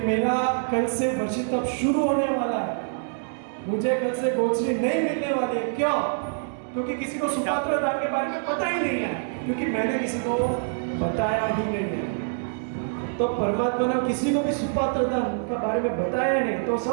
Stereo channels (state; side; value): silent; left; digital silence